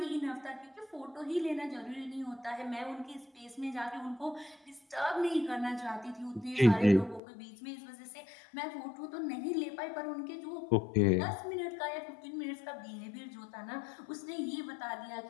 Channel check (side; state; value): right; drops out; at 7.2 s